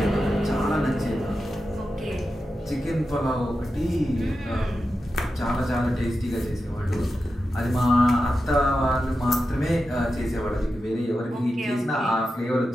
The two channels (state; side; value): normal; both; correlation 0.90